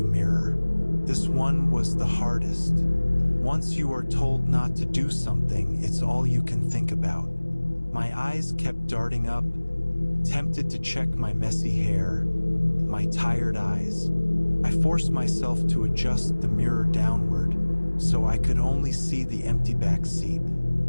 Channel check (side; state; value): both; inverted; correlation -1.00